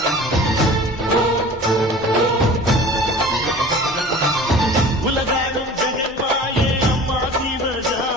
உலகாடும் ஜெகன்மாயே அம்மா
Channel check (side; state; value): both; normal; correlation 0.42